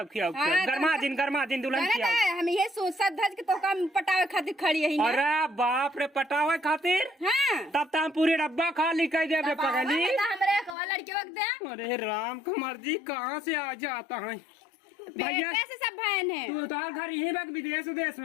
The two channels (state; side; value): drops out; right; at 10.8 s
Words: हाँ, गरमा दिन दुल्हन खियाओ। हम ये सोचत धज के तो कम पटावे खातिर खड़ी है अरे बाप रे पटावे खातिर हां तब तो हम पूरी डब्बा खाली कर देबे पगली। हमरे एक लड़के वक्त दे अरे राम का मर्जी कहाँ से आ जाता है भैया। कैसे सब बहन है तू तो घर यहीं बा विदेश उदेश